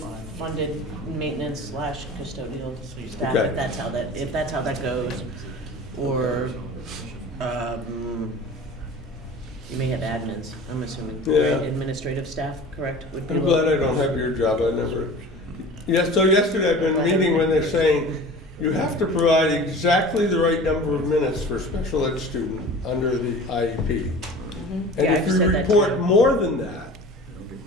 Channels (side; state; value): both; normal; correlation 0.39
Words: funded maintenance slash custodial staff, Okay. if that's how that goes, or, you may have admins, I'm assuming, Yeah. right? Administrative staff, correct? Would be I'm glad I don't have your job, I never. Yes, so yesterday I've been meeting when they're saying, you have to provide exactly the right number of minutes for a special ed student under the IEP. And Yeah, if I've you said that report too. more than that,